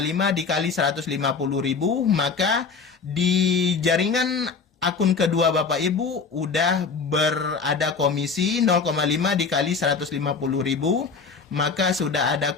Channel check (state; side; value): quieter; right; 5.1 dB